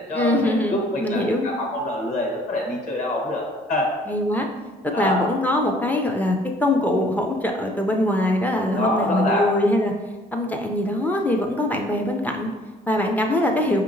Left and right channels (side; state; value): both; normal; correlation 0.58